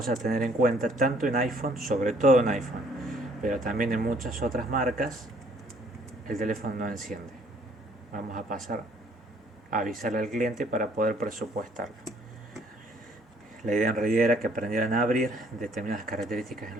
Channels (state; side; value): normal; both; correlation 0.62